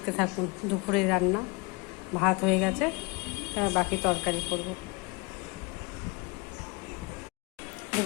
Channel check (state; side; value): quieter; right; 28.0 dB